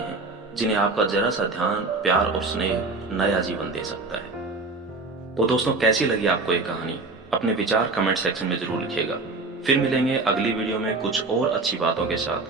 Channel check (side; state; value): left; quieter; 3.6 dB